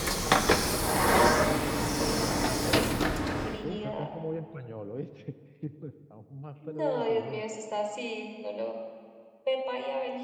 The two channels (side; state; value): both; identical; correlation 1.00